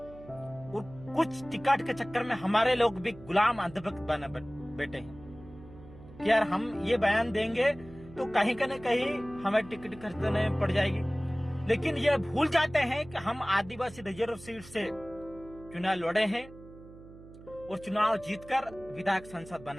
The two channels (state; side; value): noise; right; hum, 19 dB below the sound